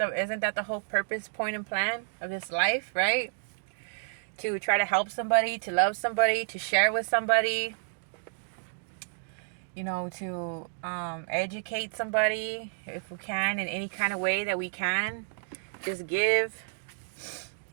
whole purpose, point, and plan of this life, right? To try to help somebody, to love somebody, to share with somebody, to educate somebody if we can in any kind of way that we can. Just give.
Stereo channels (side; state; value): left; silent; digital silence